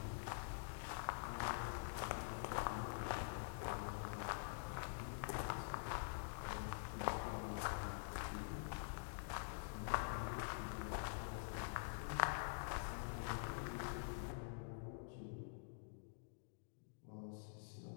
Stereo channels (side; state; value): right; silent; digital silence